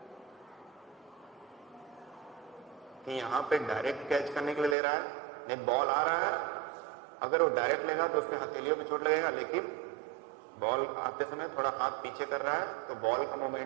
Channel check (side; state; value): left; drops out; at 4.8 s